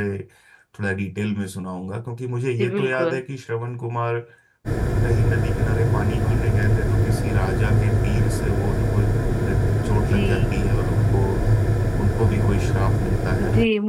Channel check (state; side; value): identical; both; correlation 1.00